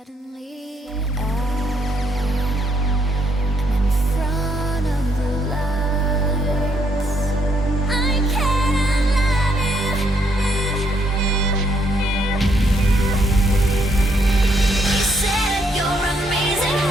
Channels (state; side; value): normal; both; correlation 0.72